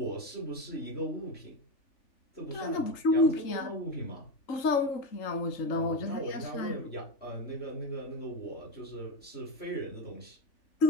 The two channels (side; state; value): right; late; 3.8 ms